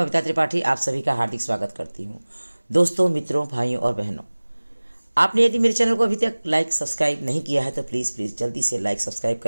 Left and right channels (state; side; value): inverted; both; correlation -1.00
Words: त्रिपाठी आप सभी का हार्दिक स्वागत करती हूँ। दोस्तों, मित्रों, भाइयों और बहनों, आपने यदि मेरे चैनल को अभी तक लाइक सब्सक्राइब नहीं किया है तो प्लीज़ जल्दी से लाइक सब्सक्राइब